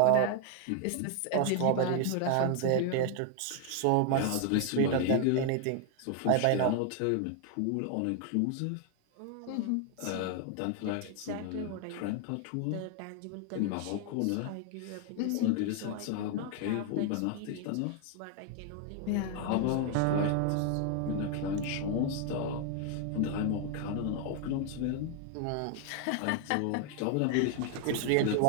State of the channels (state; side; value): different; both; correlation 0.01